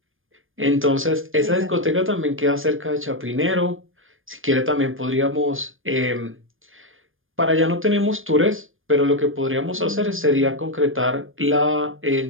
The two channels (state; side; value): late; left; 0.59 ms